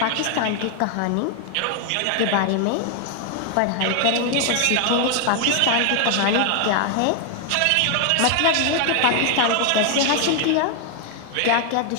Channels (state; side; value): different; both; correlation 0.00